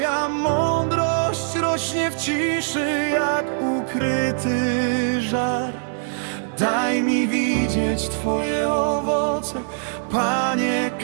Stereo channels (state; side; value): silent; left; 64 dB below the other